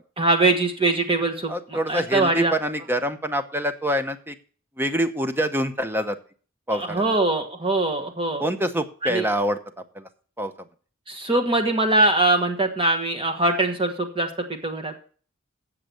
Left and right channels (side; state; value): both; normal; correlation 0.12